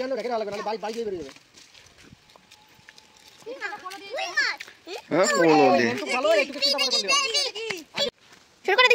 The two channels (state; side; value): identical; both; correlation 1.00